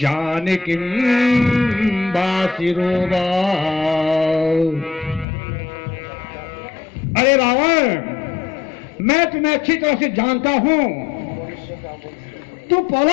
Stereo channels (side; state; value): right; drops out; at 5.2 s